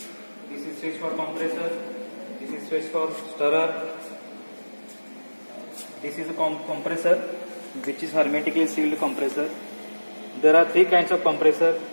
This is switch for compressor. This is switch for stirrer. This is a compressor, which is hermetically sealed compressor. There are three kinds of compressor:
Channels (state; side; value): inverted; both; correlation -1.00